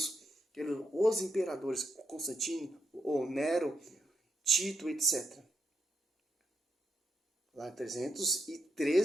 os imperadores, Constantino, ou Nero, Tito, etc. Lá em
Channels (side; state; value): both; normal; correlation 0.80